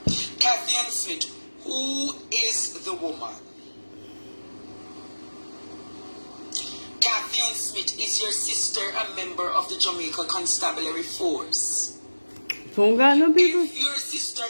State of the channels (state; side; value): inverted; both; correlation -1.00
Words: Catherine Smith, who is the woman? Catherine Smith, is your sister a member of the Jamaica Constabulary Force? Don't got no people. If your sister